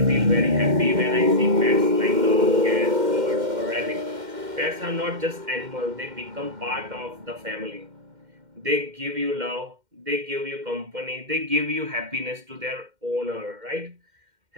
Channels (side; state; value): left; late; 2.1 ms